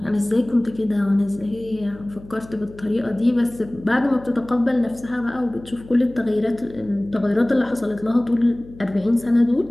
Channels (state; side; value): noise; left; hum, 19 dB below the sound